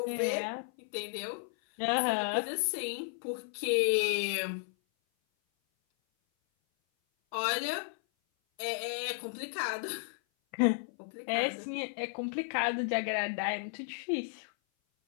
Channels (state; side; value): silent; right; 55 dB below the other